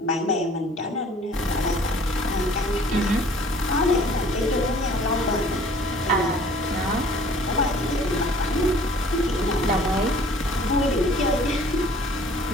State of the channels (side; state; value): both; normal; correlation 0.53